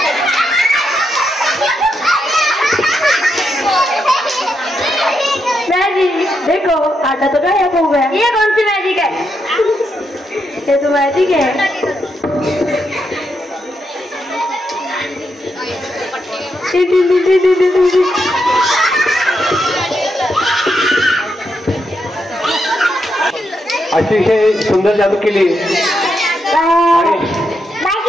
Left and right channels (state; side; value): normal; both; correlation 0.82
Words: देखो आटा तो गायब हो गया। ये कौन सी मैजिक है? ये तो मैजिक है। अतिशय सुंदर जादू केली।